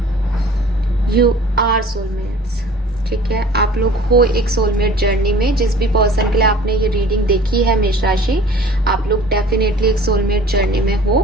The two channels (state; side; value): normal; both; correlation 0.48